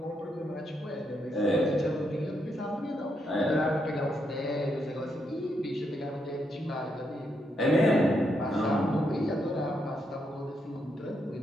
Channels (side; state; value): both; normal; correlation 0.79